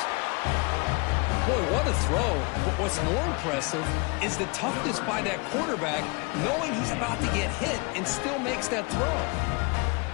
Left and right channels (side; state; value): right; quieter; 29.9 dB